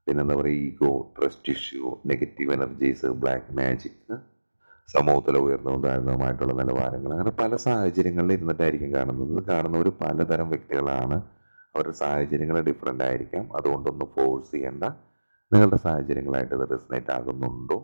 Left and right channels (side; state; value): both; inverted; correlation -1.00